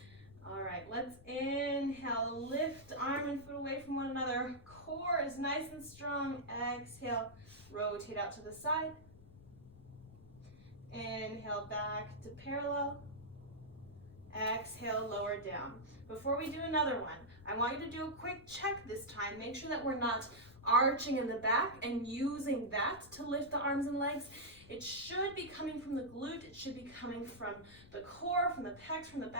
All right, let's inhale, lift arm and foot away from one another. Core is nice and strong. Exhale, rotate out to the side. Inhale, back to parallel. Exhale, lower down. Before we do another one, I want you to do a quick check this time. Make sure that we're not arching in the back and using that to lift the arms and legs. It should be coming from the glute. It should be coming from the core, from the pecs, from the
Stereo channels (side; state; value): left; noise; rumble, 20 dB below the sound